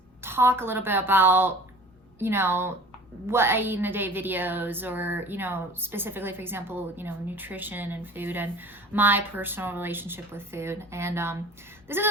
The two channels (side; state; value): both; normal; correlation 0.44